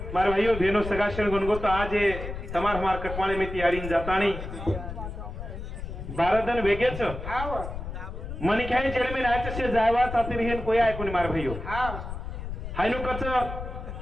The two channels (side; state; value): left; noise; rumble, 8 dB below the sound